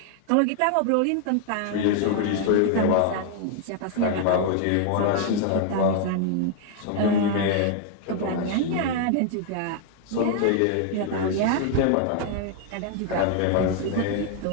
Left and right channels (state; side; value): different; both; correlation 0.00